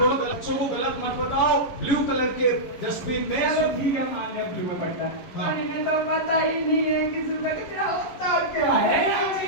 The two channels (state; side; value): late; right; 11 ms